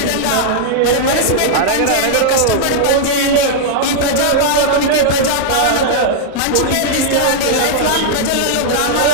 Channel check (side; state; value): both; different; correlation -0.01